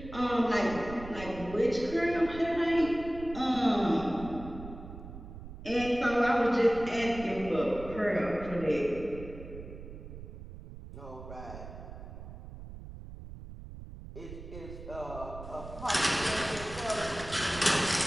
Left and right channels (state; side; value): noise; right; rumble, 13 dB below the sound